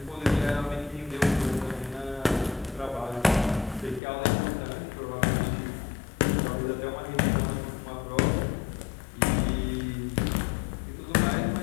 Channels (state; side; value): drops out; right; at 4.0 s